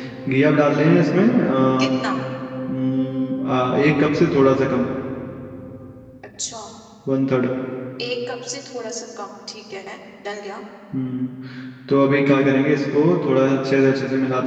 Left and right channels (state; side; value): identical; both; correlation 1.00